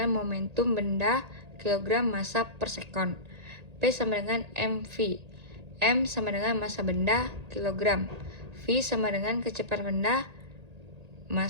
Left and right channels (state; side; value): late; left; 1.8 ms